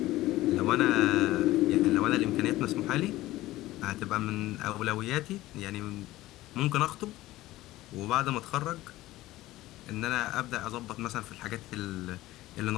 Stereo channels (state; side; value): quieter; right; 16.9 dB